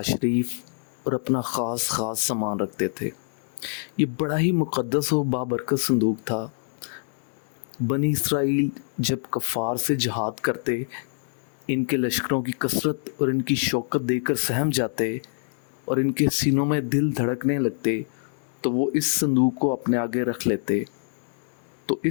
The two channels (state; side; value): silent; right; digital silence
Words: शरीफ और अपना ख़ास सामान रखते थे। ये बड़ा ही मुक़द्दस और बाबरकत संदूक था। बनी इसराइल जब कफ़ार से जहाद करते, इनके लश्करों की कसरत और इनकी शौकत देखकर सहम जाते और इनके सीनों में दिल धड़कने लगते, तो वो इस संदूक को अपने आगे रख लेते। तो